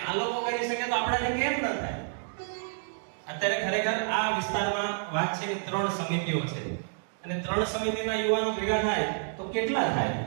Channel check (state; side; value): silent; left; digital silence